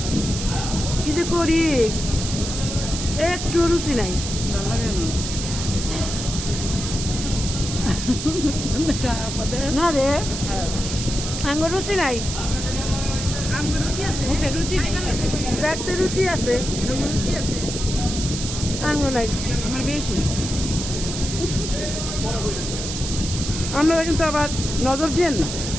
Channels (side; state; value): right; noise; hiss, 6 dB below the sound